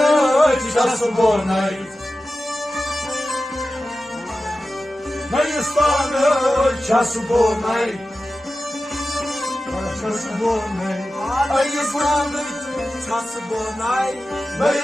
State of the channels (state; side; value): normal; both; correlation 0.94